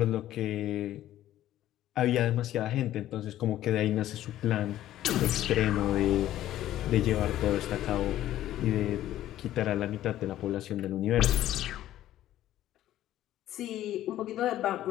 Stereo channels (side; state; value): right; quieter; 13.3 dB